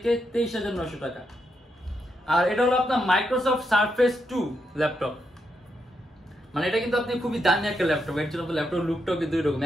23,900 টাকা। আর এটা হলো আপনার মাইক্রোসফট সারফেস 2 ল্যাপটপ। মানে এটা কিন্তু আপনি খুবই দামি একটা ল্যাপটপ, এর জন্য ল্যাপটপ লুকটাও কিন্তু এরকম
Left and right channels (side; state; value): both; normal; correlation 0.82